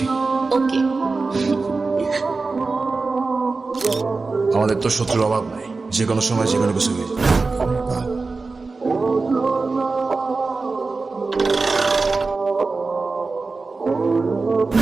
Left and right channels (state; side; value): quieter; left; 3.9 dB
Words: ওকে। আমাদের তো শত্রুর অভাব নাই, যে কোনো সময় যে কোনো কিছু হয়ে যায়।